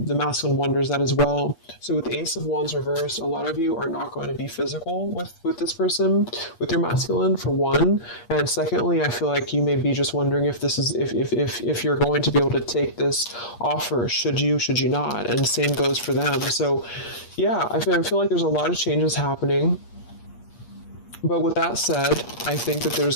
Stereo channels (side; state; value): right; late; 8.5 ms